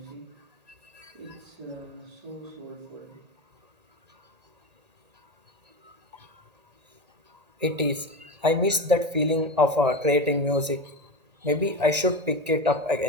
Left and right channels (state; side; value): late; left; 1.8 ms